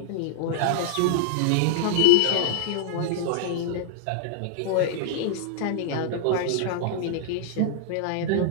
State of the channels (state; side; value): different; both; correlation -0.01